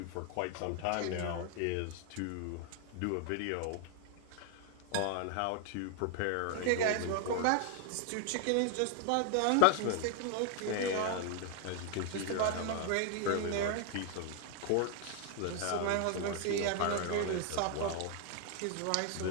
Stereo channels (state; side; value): different; both; correlation 0.00